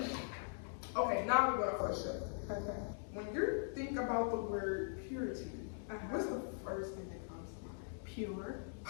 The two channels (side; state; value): right; silent; digital silence